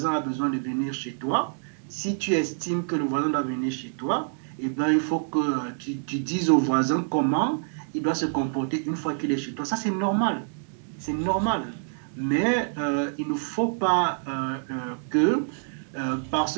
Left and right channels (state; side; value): silent; left; digital silence